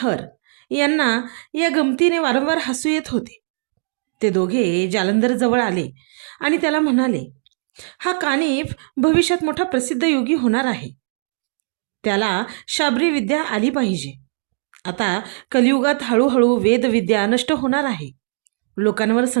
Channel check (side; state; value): left; silent; digital silence